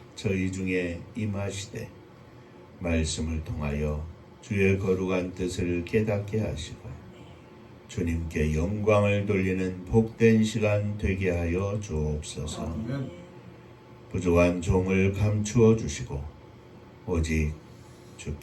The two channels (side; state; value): both; identical; correlation 1.00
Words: 저희 중에 임하시되 말씀을 통하여 주의 거룩한 뜻을 깨닫게 하시고 주님께 영광을 돌리는 복된 시간 되게 하여 주옵소서. 부족한 종을 감추어 주시고 오직